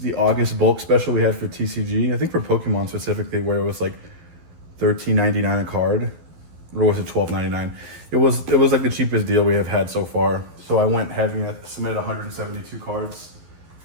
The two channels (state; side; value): late; left; 12 ms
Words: August bulk special we had for TCG. I think for Pokemon specifically, where it was like $13.99 a card, or was it $12.99? It was like the cheapest deal we have had so far. So I went heavy and I submitted 172 cards.